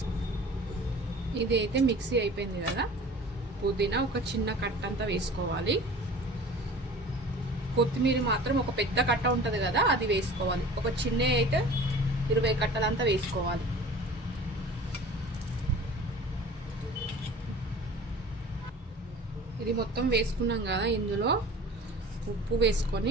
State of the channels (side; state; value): both; normal; correlation 0.42